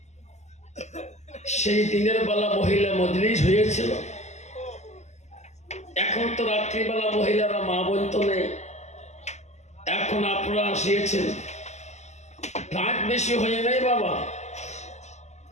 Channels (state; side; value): late; right; 0.33 ms